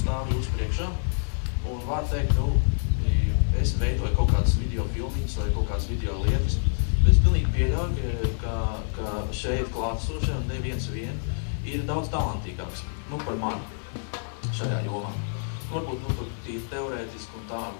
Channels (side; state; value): right; silent; digital silence